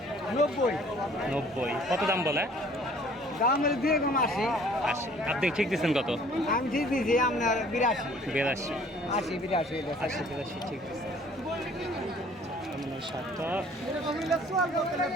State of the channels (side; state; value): both; normal; correlation 0.55